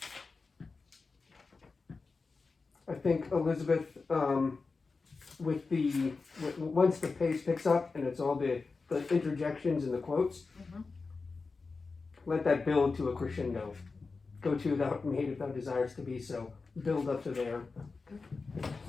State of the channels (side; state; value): right; quieter; 4.2 dB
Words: I think Elizabeth, once the pace picks up and it's all the interjections and the quotes, Mhm. let that build to a crescendo. Go to thou art made if thou desires to be so. Build up to there.